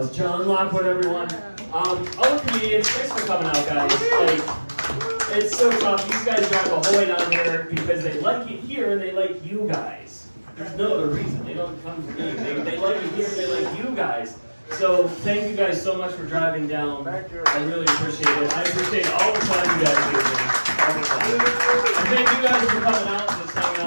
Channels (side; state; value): both; inverted; correlation -1.00